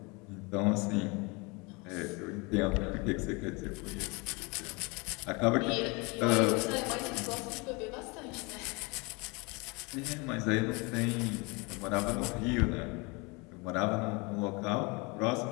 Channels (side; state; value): right; quieter; 28.1 dB